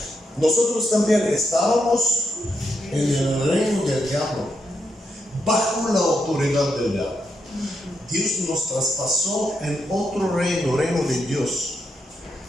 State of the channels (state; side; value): normal; both; correlation 0.82